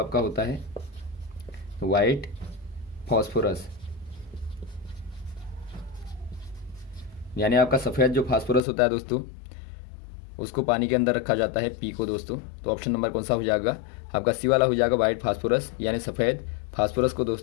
होता है वाइट फॉस्फोरस, यानी आपका सफ़ेद जो फास्फोरस होता है दोस्तों, उसको पानी के अंदर रखा जाता है, पी को दोस्तों। तो ऑप्शन नंबर कौन सा हो जाएगा, आपका सी वाला हो जाएगा वाइट फास्फोरस, यानी सफ़ेद फास्फोरस को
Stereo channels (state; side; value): drops out; right; at 8.6 s